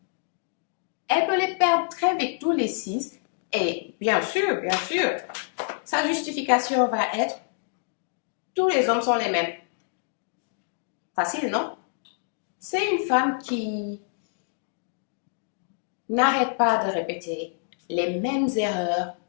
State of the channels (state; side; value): silent; right; digital silence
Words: Elle peut les perdre très vite tous les 6 et bien sûr, sa justification va être tous les hommes sont les mêmes. Facile, non? C'est une femme qui n'arrête pas de répéter les mêmes erreurs